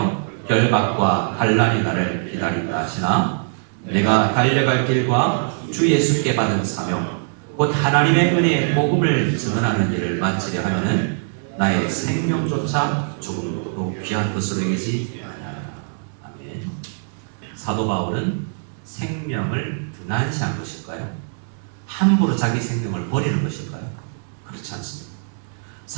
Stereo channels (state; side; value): silent; left; 64 dB below the other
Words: 결박과 환난이 나를 기다린다 하시나 내가 달려갈 길과 주 예수께 받은 사명 곧 하나님의 은혜의 복음을 증언하는 일을 마치려 하면은 나의 생명조차 조금도 귀한 것으로 여기지 아니하라. 아멘. 사도 바울은 생명을 등한시한 것일까요? 함부로 자기 생명을 버리는 것일까요? 그렇지 않습니다.